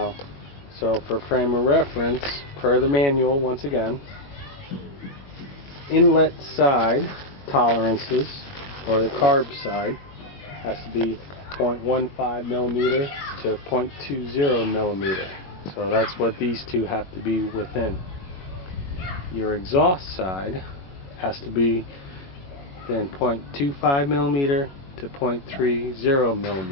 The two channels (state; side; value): late; right; 21 ms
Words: so for frame of reference, per the manual, once again, inlet side tolerances, or the carb side, has to be 0.15mm to 0.20mm. So that's what these two have to be within. Your exhaust side has to be then 0.25mm to